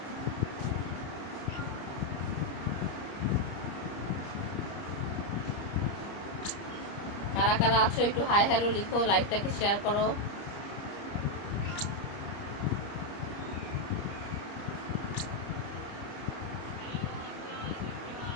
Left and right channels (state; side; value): late; right; 30 ms